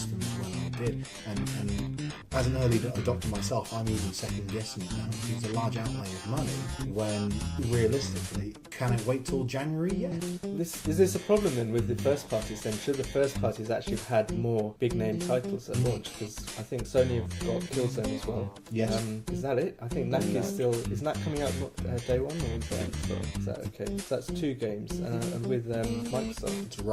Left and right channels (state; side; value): identical; both; correlation 1.00